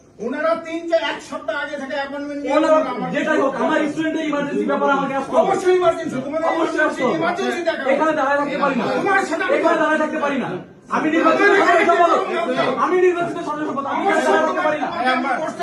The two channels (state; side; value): identical; both; correlation 1.00